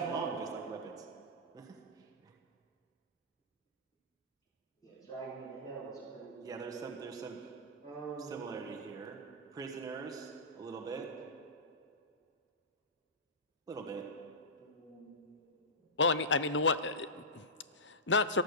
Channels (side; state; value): both; normal; correlation -0.18